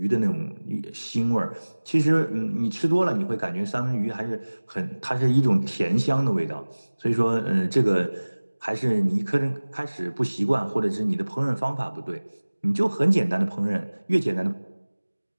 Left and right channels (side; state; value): both; inverted; correlation -1.00